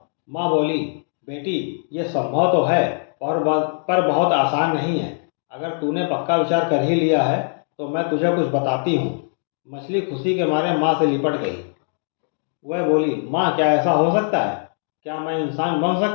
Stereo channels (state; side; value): silent; right; digital silence